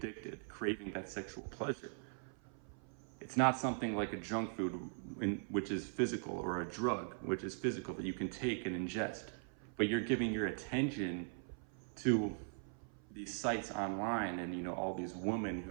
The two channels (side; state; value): left; silent; 51 dB below the other